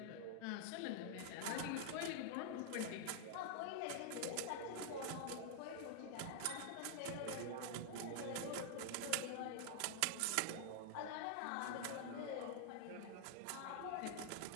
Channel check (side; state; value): both; different; correlation -0.01